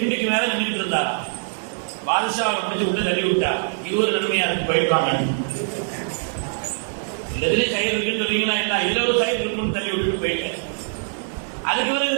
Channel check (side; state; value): left; silent; digital silence